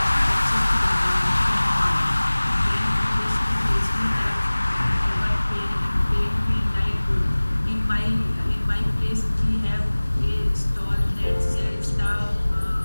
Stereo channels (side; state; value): both; inverted; correlation -1.00